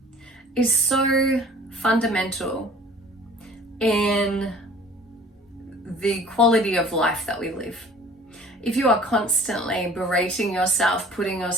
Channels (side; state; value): both; normal; correlation 0.49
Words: is so fundamental in the quality of life that we live. If you are constantly berating yourself, putting